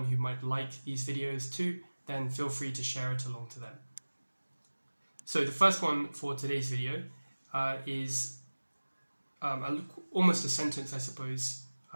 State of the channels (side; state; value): both; inverted; correlation -1.00